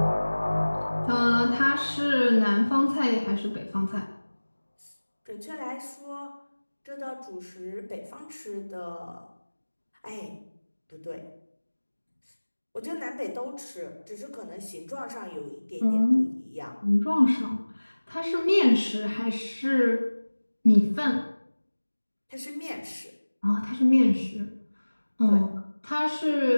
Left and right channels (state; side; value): inverted; both; correlation -1.00